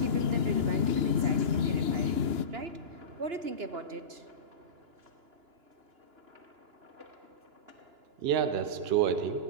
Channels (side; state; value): left; late; 2.9 ms